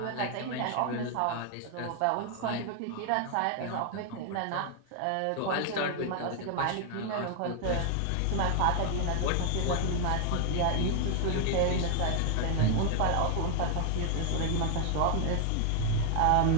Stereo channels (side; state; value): both; different; correlation 0.00